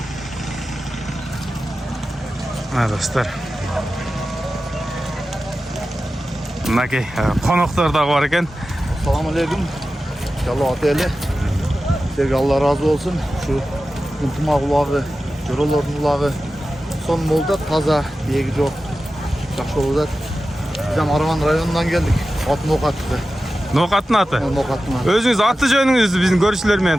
Достор. Мынакей коноктор дагы бар экен. Assalamu alaikum. İnşallah ateli. Sizlerge Allah razı olsun. Şu Kuntumak ulağı, Joroların ulağı son molda taza, diyegi yok. Жақсы olacak. Biz hem Aravan rayonundan geldik. At Nokat'tı. Nokat'ın atı. Nokat'ın atı. Özünüz atı jönüңüzdü bizim görüşçülerмен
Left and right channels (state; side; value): normal; both; correlation 0.94